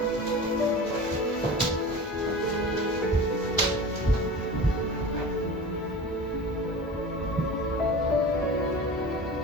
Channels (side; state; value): both; normal; correlation 0.34